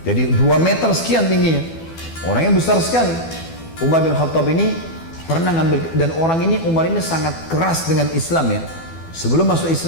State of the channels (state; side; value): late; right; 12 ms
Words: Jadi 2 meter sekian tingginya. Orangnya besar sekali. Umar bin Khattab ini pernah ngambil, dan orang ini, Umar ini sangat keras dengan Islam ya. Sebelum masuk